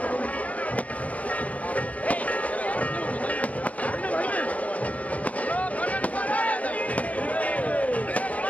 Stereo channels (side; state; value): right; late; 0.068 ms